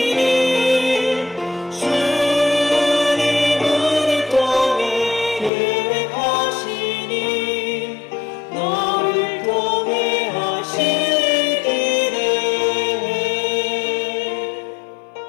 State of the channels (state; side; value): drops out; right; at 5.5 s